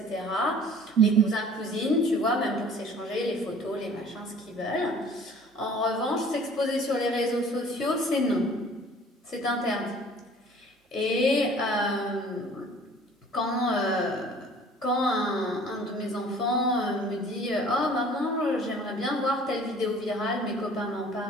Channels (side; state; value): both; normal; correlation 0.50